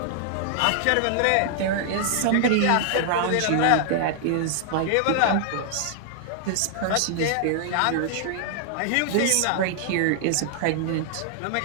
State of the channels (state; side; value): different; both; correlation 0.00